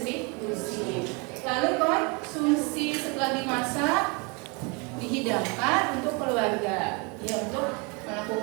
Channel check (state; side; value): quieter; left; 31.0 dB